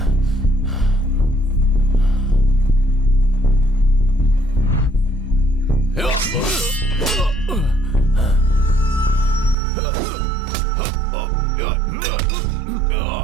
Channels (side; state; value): left; drops out; at 9.6 s